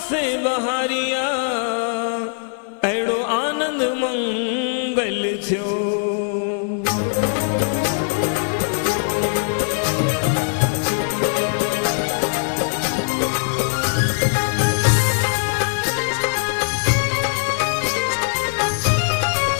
बहारिया अहिड़ो आनंद मंगल थियो।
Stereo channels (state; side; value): silent; right; 58 dB below the other